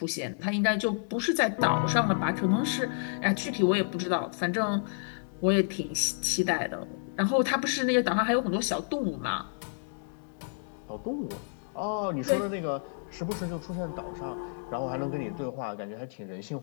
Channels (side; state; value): right; silent; digital silence